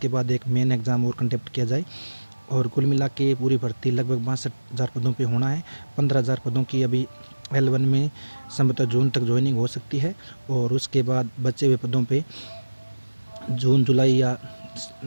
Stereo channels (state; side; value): inverted; both; correlation -1.00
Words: बाद एक मेन एग्ज़ाम और कंडक्ट किया जाए और कुल मिला के पूरी भर्ती लगभग 62,000 पदों पे होना है। 15,000 पदों की अभी L1 में संभवतः जून तक ज्वाइनिंग हो सकती है और उसके बाद बचे हुए पदों पे जून जुलाई या